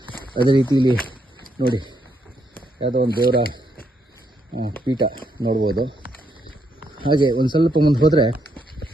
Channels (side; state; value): both; normal; correlation 0.77